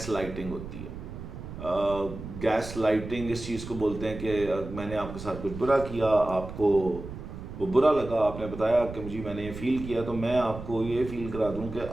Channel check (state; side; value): noise; right; rumble, 10 dB below the sound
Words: لائٹنگ ہوتی ہے. گیس لائٹنگ اس چیز کو بولتے ہیں کہ میں نے آپ کے ساتھ کچھ برا کیا, آپ کو وہ برا لگا, آپ نے بتایا کہ مجھے میں نے یہ فیل کیا, تو میں آپ کو یہ فیل کرا دوں کہ